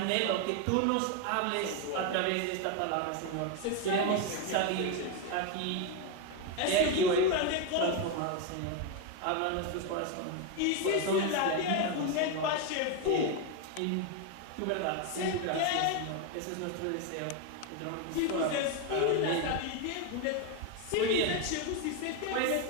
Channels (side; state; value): both; different; correlation 0.02